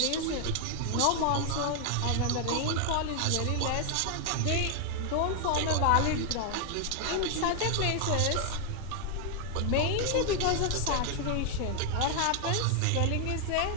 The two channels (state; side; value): different; both; correlation 0.00